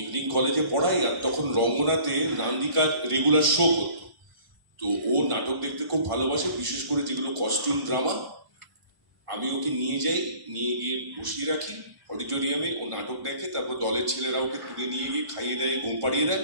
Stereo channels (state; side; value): late; left; 1.5 ms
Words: ইভিনিং কলেজে পড়াই, আর তখন রঙ্গনাতে নান্দিকার রেগুলার শো করতো। তো ও নাটক দেখতে খুব ভালোবাসে, বিশেষ করে যেগুলো কস্টিউম ড্রামা। আমি ওকে নিয়ে যাই, নিয়ে গিয়ে বসিয়ে রাখি অডিটোরিয়ামে, ও নাটক দেখে, তারপর দলের ছেলেরা ওকে তুলে নিয়ে গিয়ে খাইয়ে দেয়, ঘুম পাড়িয়ে দেয়।